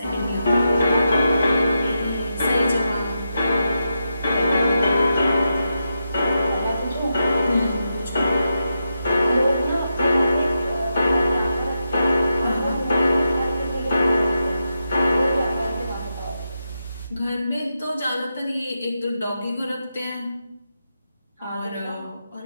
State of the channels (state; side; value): inverted; both; correlation -0.86